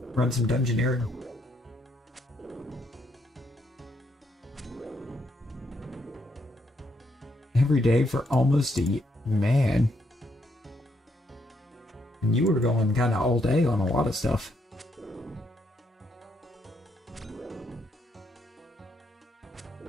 some dungeoneering. Every day for almost a year. Man. And you were going kind of all day on a lot of stuff.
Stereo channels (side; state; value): both; normal; correlation 0.75